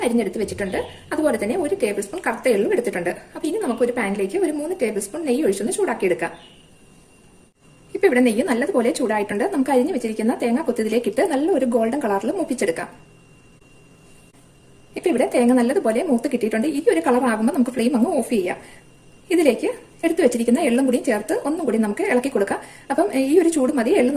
അരിഞ്ഞെടുത്ത് വെച്ചിട്ടുണ്ട്. അതുപോലെ തന്നെ 1 ടേബിൾ സ്പൂൺ കറുത്ത എള്ളും എടുത്തിട്ടുണ്ട്. അപ്പൊ ഇനി നമുക്ക് ഒരു പാനിലേക്ക് ഒരു 3 ടേബിൾ സ്പൂൺ നെയ്യ് ഒഴിച്ചൊന്ന് ചൂടാക്കി എടുക്കാം. ഇപ്പൊ ഇവിടെ നെയ്യ് നല്ലതുപോലെ ചൂടായിട്ടുണ്ട്. നമുക്ക് അരിഞ്ഞു വെച്ചിരിക്കുന്ന തേങ്ങ കൊത്തിതിലേക്ക് ഇട്ട് നല്ല ഒരു ഗോൾഡൻ കളറിൽ മൂപ്പിച്ചെടുക്കാം. ഇപ്പൊ ഇവിടെ തേങ്ങ നല്ലതുപോലെ മൂത്ത് കിട്ടിയിട്ടുണ്ട്. ഈ ഒരു കളർ ആകുമ്പോൾ നമുക്ക് ഫ്ലെയിം അങ്ങ് ഓഫ് ചെയ്യാം. ഇതിലേക്ക് എടുത്തു വെച്ചിരിക്കുന്ന എള്ളും കൂടി ചേർത്ത് ഒന്നും കൂടി നമുക്ക് ഇളക്കി കൊടുക്കാം. അപ്പം ഈ ഒരു ചൂട് മതി എള്ള്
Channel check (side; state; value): both; identical; correlation 1.00